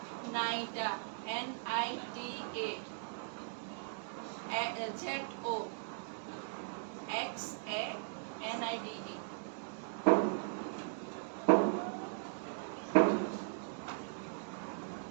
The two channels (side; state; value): left; silent; digital silence